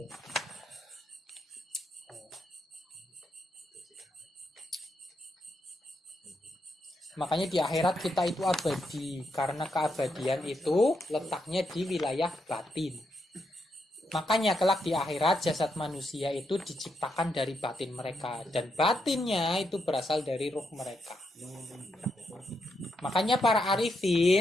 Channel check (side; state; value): both; normal; correlation 0.81